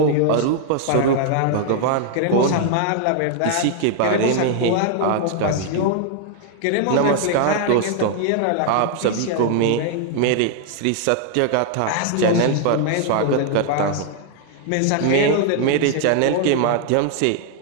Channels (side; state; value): both; different; correlation 0.00